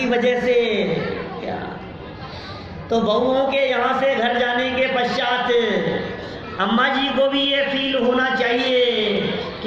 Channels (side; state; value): both; identical; correlation 1.00